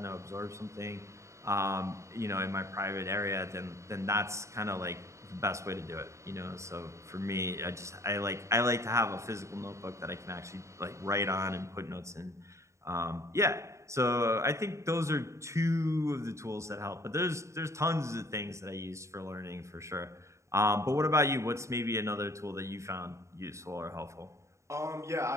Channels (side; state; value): left; late; 0.14 ms